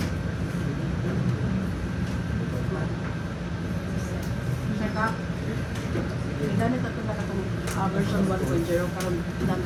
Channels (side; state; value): both; identical; correlation 1.00